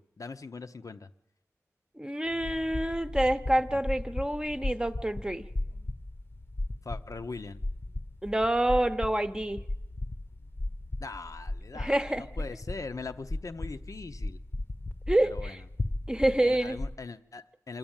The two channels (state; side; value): normal; both; correlation 0.96